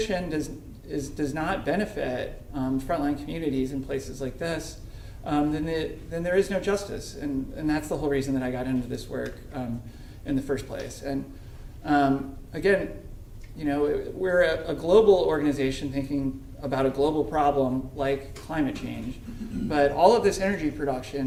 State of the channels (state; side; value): identical; both; correlation 1.00